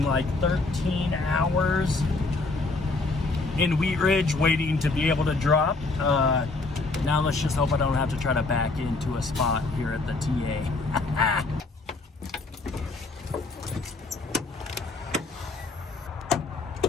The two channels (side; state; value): right; quieter; 3.5 dB